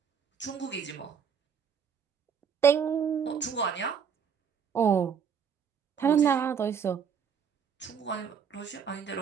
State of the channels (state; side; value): quieter; left; 7.1 dB